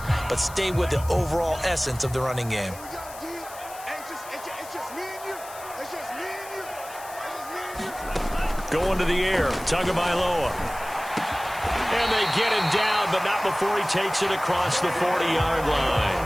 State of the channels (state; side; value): noise; left; hiss, 16 dB below the sound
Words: but stay with the overall essence of the running game. Going to the air, Tagovailoa. And they get him down, but not before he takes it across the 40-yard